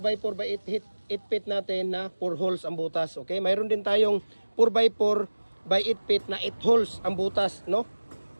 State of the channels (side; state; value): both; inverted; correlation -1.00